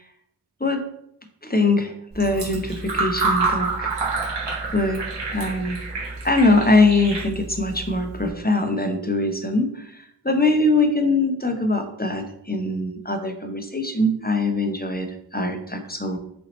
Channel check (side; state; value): both; normal; correlation 0.46